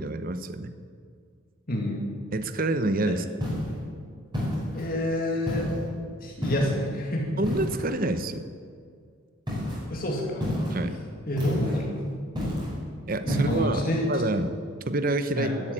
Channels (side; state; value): both; normal; correlation 0.56